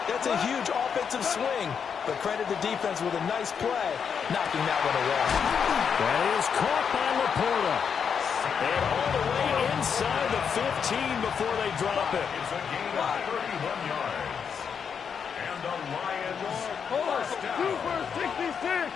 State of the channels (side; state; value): right; quieter; 6.9 dB